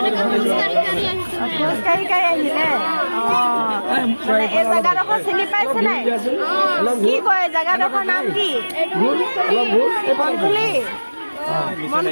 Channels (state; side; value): inverted; both; correlation -1.00